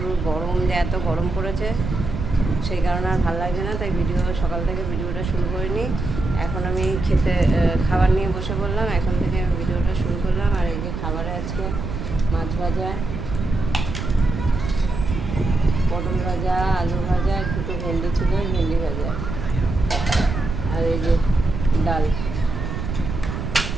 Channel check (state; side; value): noise; right; rumble, 5 dB below the sound